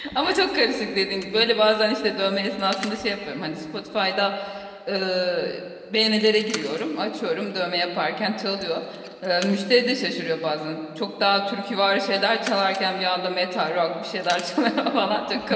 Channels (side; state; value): both; identical; correlation 1.00